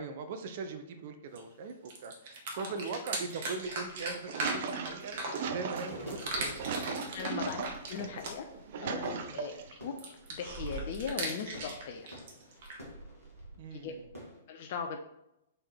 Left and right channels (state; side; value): inverted; both; correlation -0.36